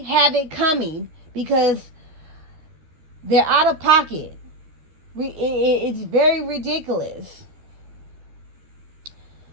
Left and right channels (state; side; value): late; left; 13 ms